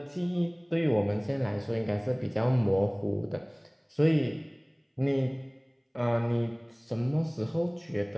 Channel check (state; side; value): identical; both; correlation 1.00